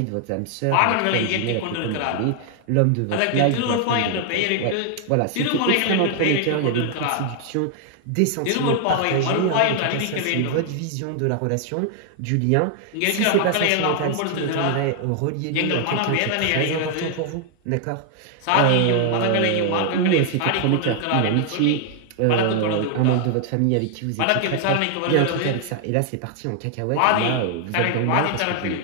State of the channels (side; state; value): both; different; correlation 0.00